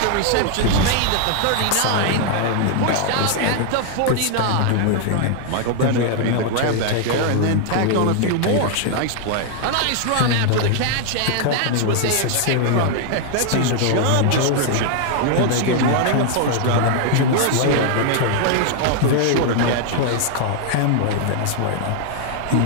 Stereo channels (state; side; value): different; both; correlation 0.00